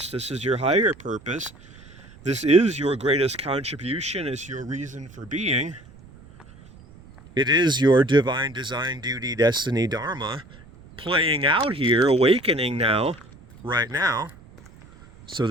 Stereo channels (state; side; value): noise; right; rumble, 22 dB below the sound